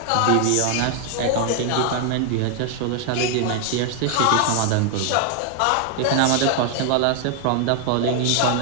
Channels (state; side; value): different; both; correlation 0.00